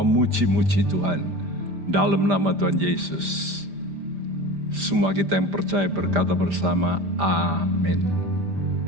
Tuhan dalam nama Tuhan Yesus. Semua kita yang percaya berkata bersama, amin.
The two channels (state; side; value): late; left; 5.0 ms